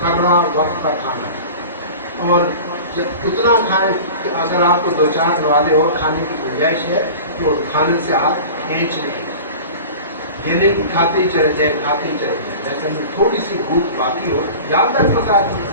وقت پر کھانا، اور جب اتنا کھائیں کہ اگر آپ کو 2-4 والے اور کھانے کی گنجائش ہے تو کھانے سے ہاتھ کھینچ لیں، یہ نہیں کہ کھاتے ہی چلے جائیں، کھاتے ہی چلے جائیں، لیکن تھوڑی سی بھوک باقی ہو، یاد تک بتا دیں،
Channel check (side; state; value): both; inverted; correlation -0.37